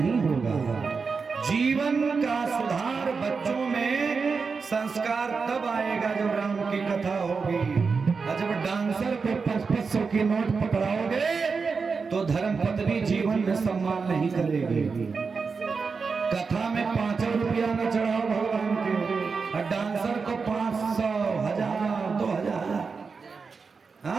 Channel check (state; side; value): quieter; left; 5.0 dB